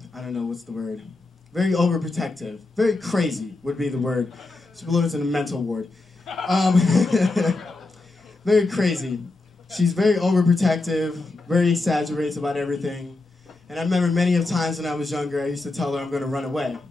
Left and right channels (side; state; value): right; quieter; 3.2 dB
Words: I don't know what's the word, very overprotective, very crazy would be the word. She belongs in a mental ward. Very crazy. She's very overprotective, very exaggerates about everything. And I remember many of times when I was younger, I used to tell her I'm going to run away.